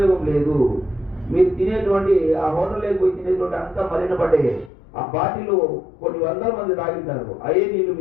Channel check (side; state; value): right; drops out; at 4.7 s